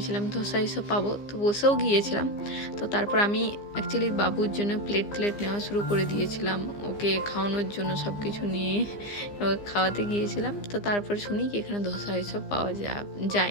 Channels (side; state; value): right; late; 15 ms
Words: ধোসা এসব পাবো, তো বসেও গিয়েছিলাম। তো তারপর আমি অ্যাকচুয়ালি বাবুর জন্য প্লেট নেওয়া শুরু করে দিয়েছিলাম, ওকে খাওয়ানোর জন্য সব কিছু নিয়ে খাওয়াতে গিয়েছিলাম। তো তারপর শুনি কি এখানে ধোসা এসব পাওয়া